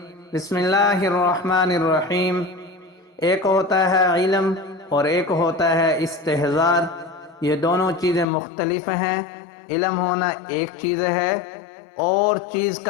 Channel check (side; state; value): right; drops out; at 8.2 s